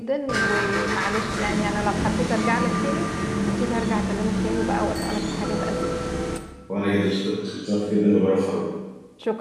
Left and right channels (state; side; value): identical; both; correlation 1.00